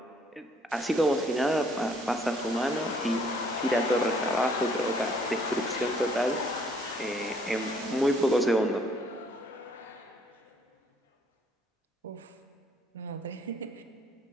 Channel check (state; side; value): normal; both; correlation 0.63